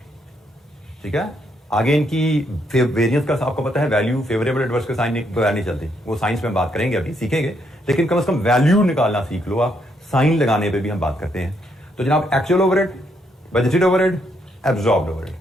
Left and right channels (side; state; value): both; normal; correlation 0.75